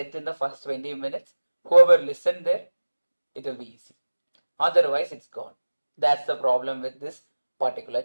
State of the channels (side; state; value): both; inverted; correlation -1.00